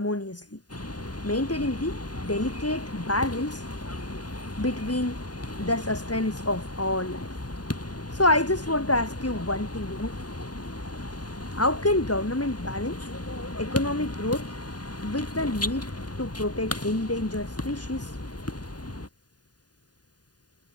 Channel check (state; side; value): late; right; 0.69 ms